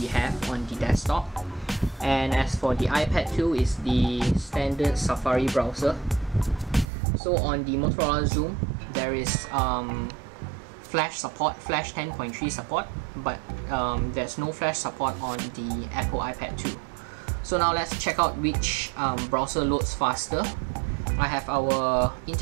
have on the desktop. And as for the iPad 2, is the standard Safari browser. So on the Motorola Xoom, there is Flash support, Flash 10.3 support, but there's no Flash support on the Apple iPad 2. So now let's check out which browser loads faster. I have our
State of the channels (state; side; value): drops out; left; at 6.9 s